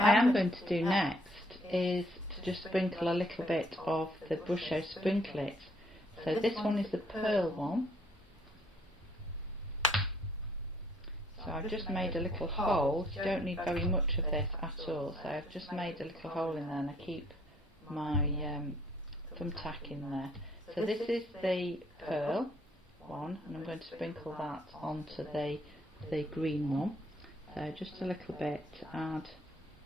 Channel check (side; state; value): both; normal; correlation 0.65